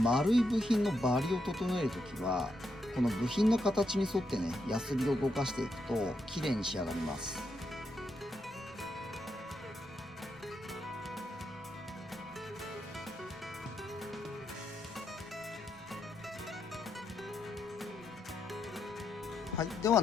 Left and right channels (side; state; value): right; noise; rumble, 26 dB below the sound